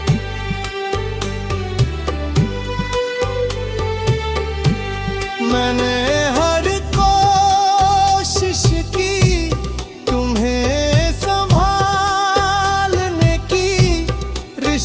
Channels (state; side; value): identical; both; correlation 1.00